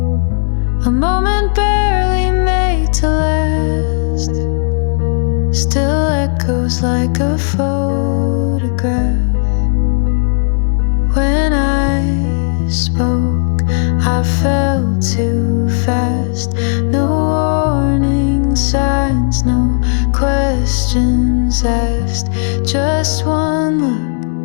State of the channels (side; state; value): right; silent; digital silence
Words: A moment barely made to last still echoes like a photograph. When I spoke, I felt too fast. No warning signs, no questions asked. Just one